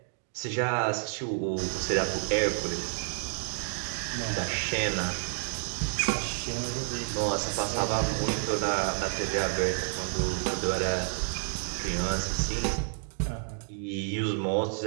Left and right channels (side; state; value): left; silent; digital silence